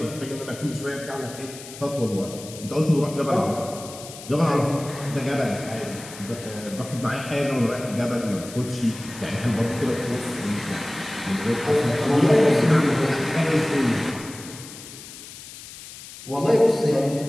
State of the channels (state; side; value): noise; left; hiss, 15 dB below the sound